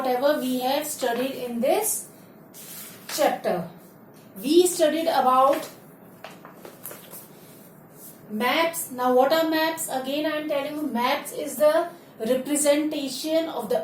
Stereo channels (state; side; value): identical; both; correlation 1.00